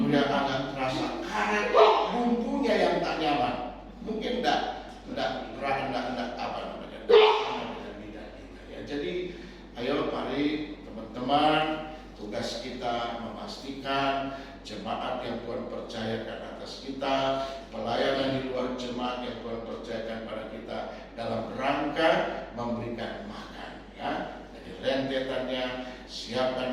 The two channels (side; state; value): both; identical; correlation 1.00